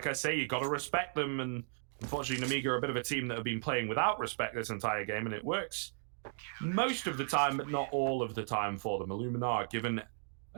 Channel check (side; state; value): left; silent; digital silence